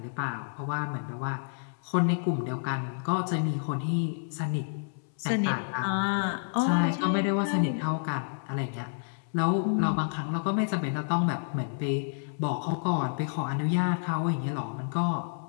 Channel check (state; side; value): silent; right; 58 dB below the other